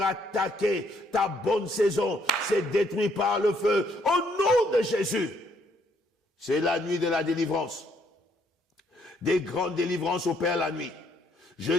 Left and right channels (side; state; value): both; normal; correlation 0.69